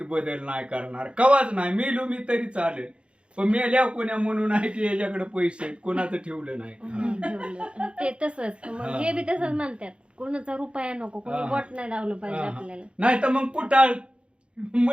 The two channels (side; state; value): left; late; 0.057 ms